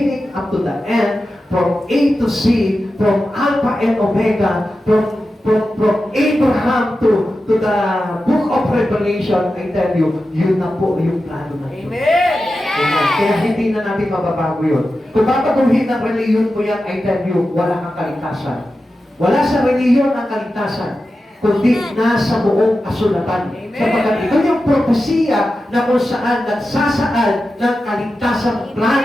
up to the end, from A to Z, from Alpha and Omega, from Abraham to the book of Revelation, I tell you, yun na po yung plano ng Diyos. Amen. Amen. Kaya hindi na natin mababago yun. Kung babaguhin ng reliyon mo yan, I tell you, wala kang kaligtasan. Wala sa reliyon ang kaligtasan, kundi nasa buong kasulatan. Amen. Sapagkat ito yung propesiya na kung saan nagsasaad ng kaligtasang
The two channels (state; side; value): normal; both; correlation 0.92